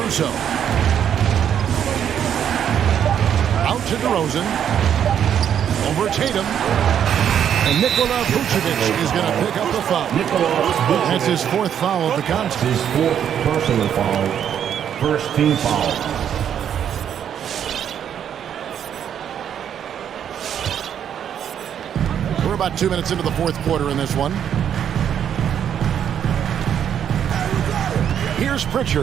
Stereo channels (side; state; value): left; quieter; 9.1 dB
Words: Out to DeRozan. Over Tatum. And Nikola Vucevic is going to pick up the foul. That's his 4th foul of the contest. His 4th personal foul. First team foul. We're about 2 minutes into the 4th quarter in this one. Here's